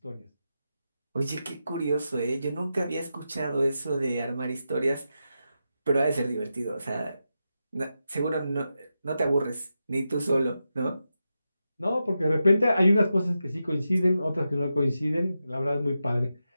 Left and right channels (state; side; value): inverted; both; correlation -0.89